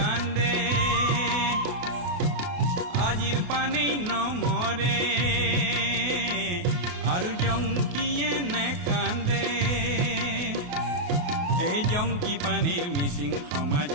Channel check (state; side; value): late; left; 28 ms